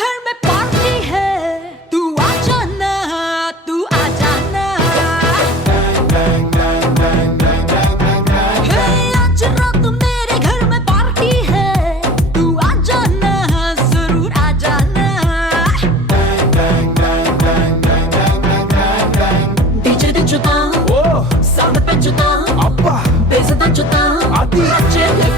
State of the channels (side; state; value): both; normal; correlation 0.41